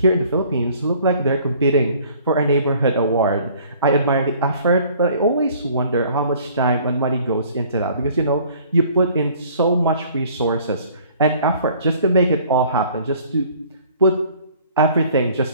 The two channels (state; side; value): inverted; both; correlation -0.54